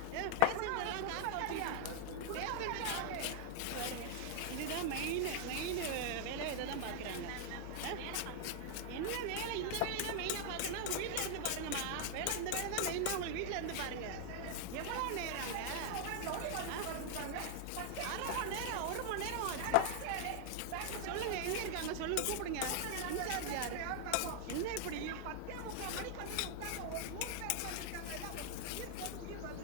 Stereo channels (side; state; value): both; different; correlation 0.00